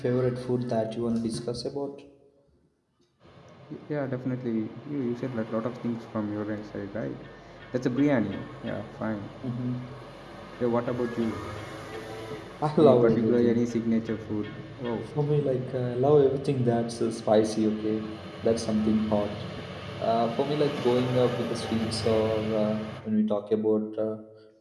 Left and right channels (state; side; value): identical; both; correlation 1.00